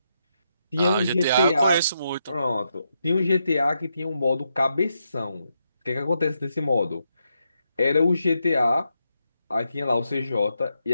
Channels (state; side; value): inverted; both; correlation -0.82